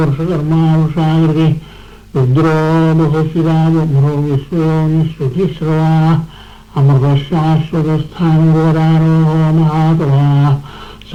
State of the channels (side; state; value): both; identical; correlation 1.00